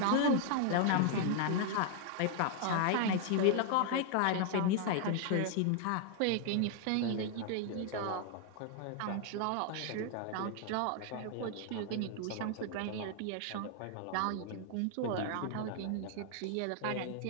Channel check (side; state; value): both; different; correlation 0.00